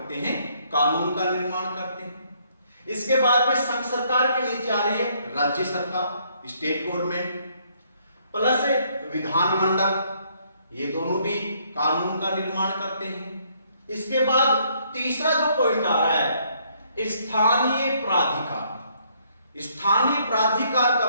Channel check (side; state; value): both; inverted; correlation -0.68